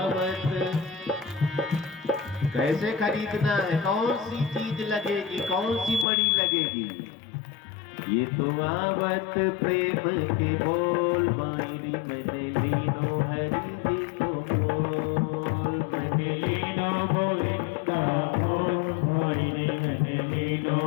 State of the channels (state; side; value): drops out; right; at 6.1 s